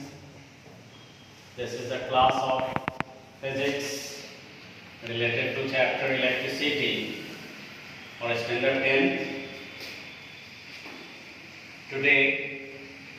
This is the class of physics related to chapter electricity for standard 10. Today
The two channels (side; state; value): both; identical; correlation 1.00